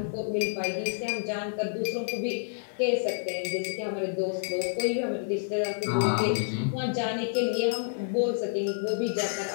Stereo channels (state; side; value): silent; right; digital silence